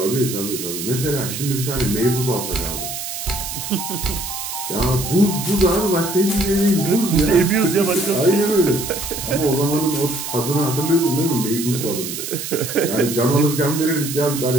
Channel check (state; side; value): noise; right; hiss, 6 dB below the sound